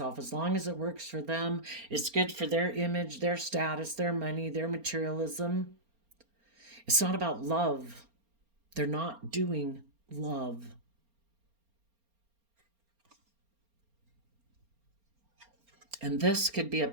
As long as it works for them, it's good for their image, their status, their money, their materialism. It's not about love. They're not doing love. And this could be a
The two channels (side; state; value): left; late; 4.3 ms